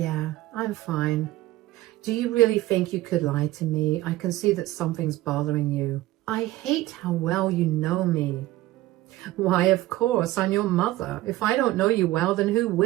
I'm fine. Do you really think you could lie to me? I can see that something's bothering you. I hate how well you know me. Why, of course, I'm your mother. If I don't know you well, then who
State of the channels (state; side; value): quieter; left; 16.6 dB